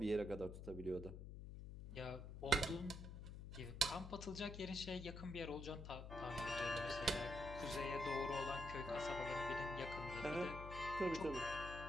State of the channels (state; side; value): noise; left; hum, 9 dB below the sound